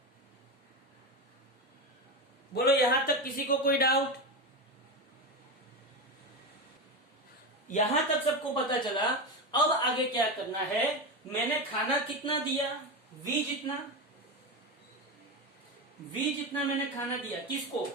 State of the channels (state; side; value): normal; both; correlation 0.18